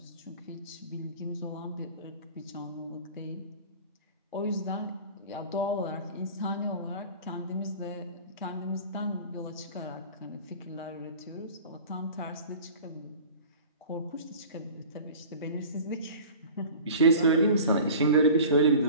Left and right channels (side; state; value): both; inverted; correlation -0.41